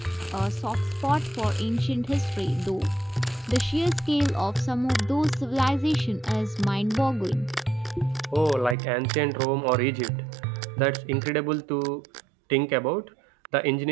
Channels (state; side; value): drops out; left; at 8.8 s